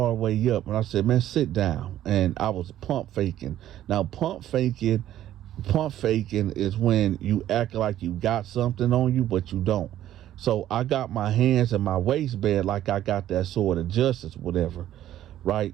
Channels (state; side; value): quieter; left; 12.4 dB